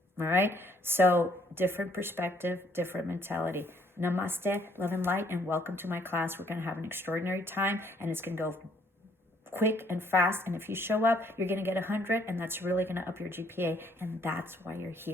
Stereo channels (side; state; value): both; normal; correlation 0.65